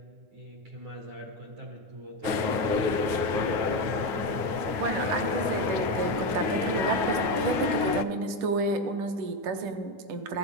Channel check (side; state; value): left; late; 9.3 ms